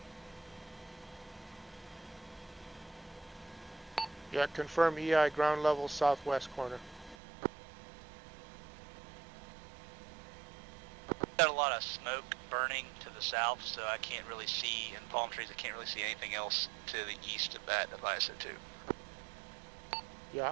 Yeah, confirm EI ground level southwest corner. Got a lot of smoke burning to the south, so I can't really see, and palm trees, I can't really see anything else to the east of that of ISO2. Yeah,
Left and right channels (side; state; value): left; drops out; at 7.2 s